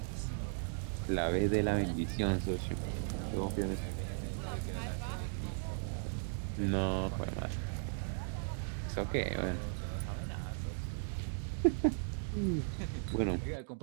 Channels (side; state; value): left; silent; digital silence